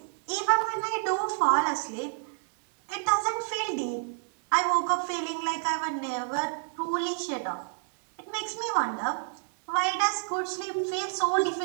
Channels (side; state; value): left; silent; digital silence